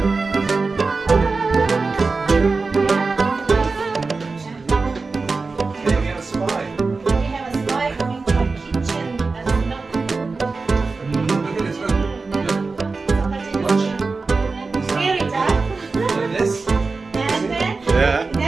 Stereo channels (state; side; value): quieter; left; 4.0 dB